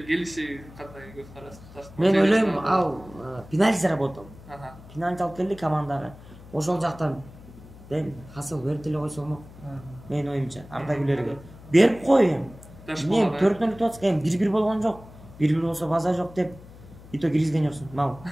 келиши кандай көз караш? Мен ойлойм, ал пенальти заработал. Пенальти алып келди командага. Ошол жактан Хасыл берип эле койсо болмок. Мен оюмча Арда Гүлерге берип кой эми. Мен 4-0 утуп атсак, 1-1 болгон жок. 1-1 болсо база жок деп ито киргизген жоксуң, мал.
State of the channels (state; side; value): noise; left; hum, 19 dB below the sound